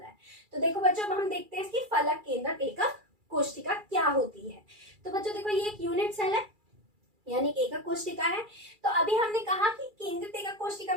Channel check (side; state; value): left; late; 2.3 ms